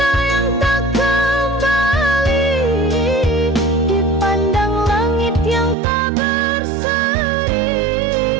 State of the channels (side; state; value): left; drops out; at 5.8 s